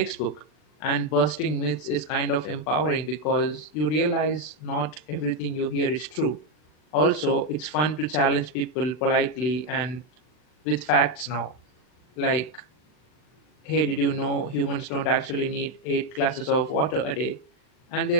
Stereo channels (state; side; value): late; right; 39 ms